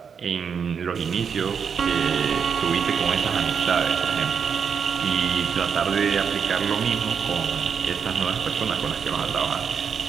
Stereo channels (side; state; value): left; quieter; 6.7 dB